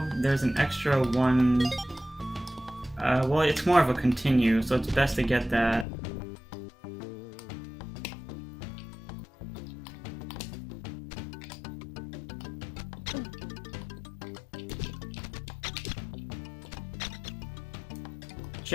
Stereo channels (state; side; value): drops out; right; at 5.9 s